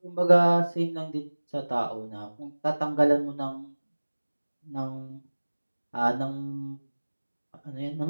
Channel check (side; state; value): both; inverted; correlation -1.00